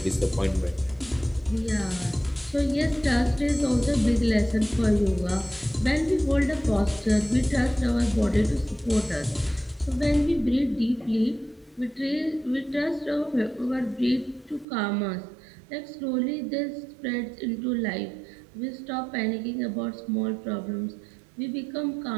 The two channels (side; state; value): left; drops out; at 14.7 s